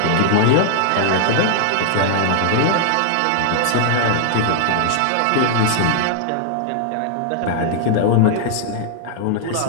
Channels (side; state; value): both; different; correlation -0.01